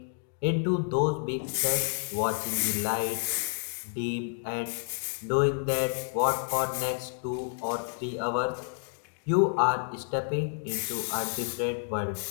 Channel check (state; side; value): silent; right; 58 dB below the other